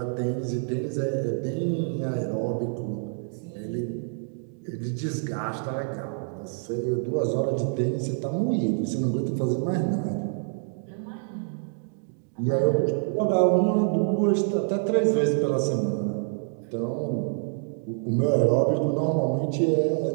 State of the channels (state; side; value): silent; left; digital silence